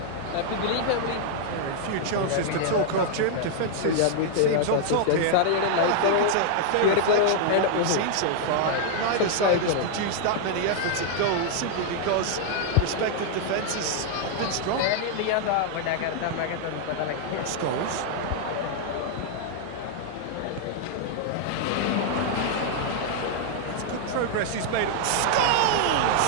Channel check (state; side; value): different; both; correlation -0.01